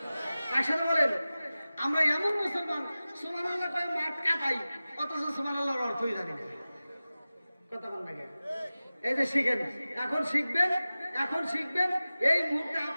একসাথে বলেন। আমরা এমন মুসলমান সুবহানাল্লাহ কয় মাঠ কাটাই, অথচ সুবহানাল্লাহর অর্থই জানি না। কথা বল না কেন? এই যে শিখেন, এখন শিখবেন, এখন শিখবেন। এই মুহূর্তে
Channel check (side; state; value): both; inverted; correlation -0.97